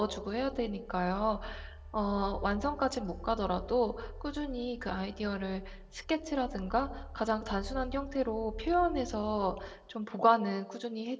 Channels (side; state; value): both; identical; correlation 1.00